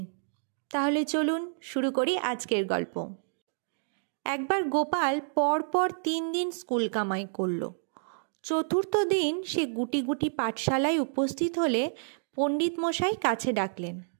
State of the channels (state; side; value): silent; left; digital silence